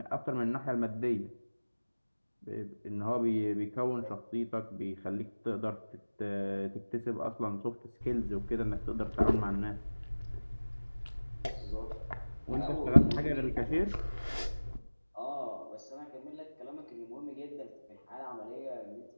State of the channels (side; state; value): both; inverted; correlation -1.00